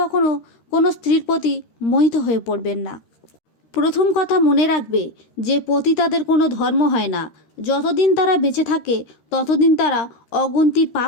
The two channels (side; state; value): right; late; 13 ms